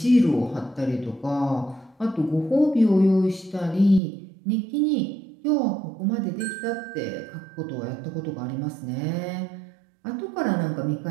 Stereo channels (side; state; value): left; drops out; at 4.0 s